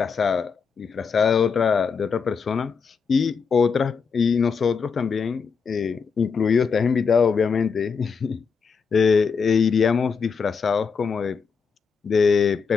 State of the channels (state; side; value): quieter; right; 5.7 dB